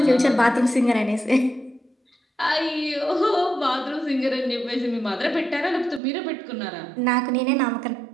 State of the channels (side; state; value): left; drops out; at 6.0 s